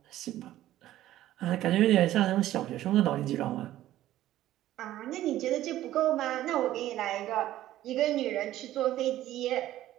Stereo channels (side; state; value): left; quieter; 14.0 dB